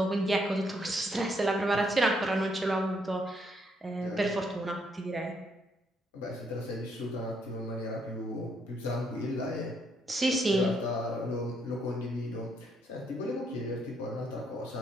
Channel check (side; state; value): both; normal; correlation 0.72